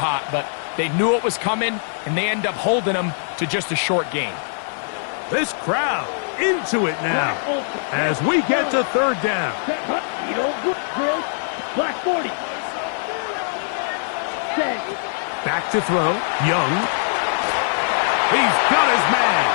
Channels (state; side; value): silent; right; digital silence